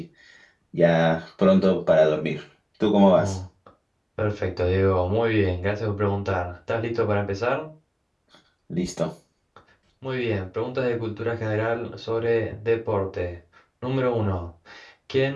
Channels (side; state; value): both; identical; correlation 1.00